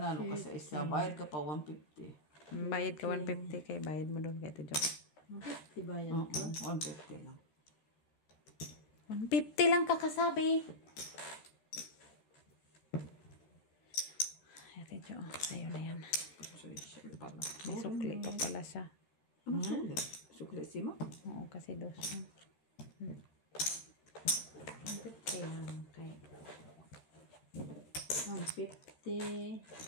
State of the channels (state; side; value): late; right; 13 ms